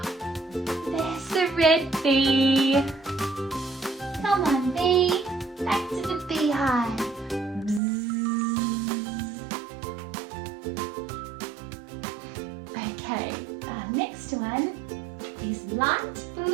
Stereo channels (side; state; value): left; drops out; at 7.8 s